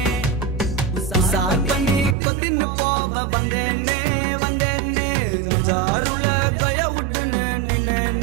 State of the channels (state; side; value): drops out; left; at 2.1 s